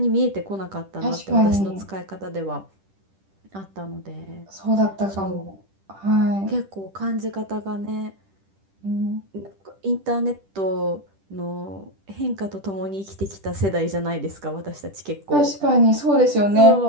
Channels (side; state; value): left; late; 10 ms